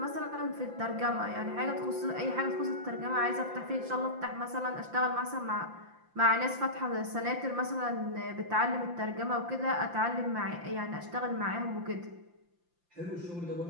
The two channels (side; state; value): left; late; 5.8 ms